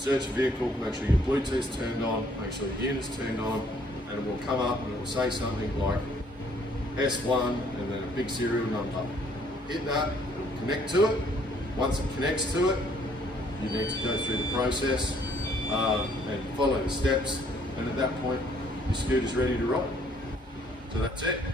your vehicle, make sure your Bluetooth's turned on, make sure the unit's turned on, and it will come up and it will say something like S1 and then a big serial number. Hit that, it will connect to it. Once it connects to it, you need to go through the process and follow the steps, and at that point, your scooter's ready to ride. So that's it.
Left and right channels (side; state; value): both; normal; correlation 0.63